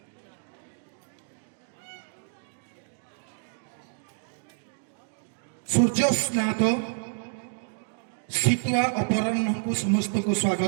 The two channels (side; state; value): left; silent; digital silence